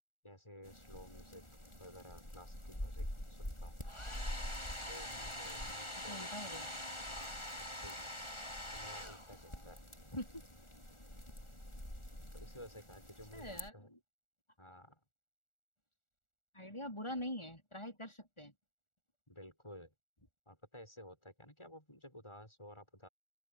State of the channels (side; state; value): right; late; 1.4 ms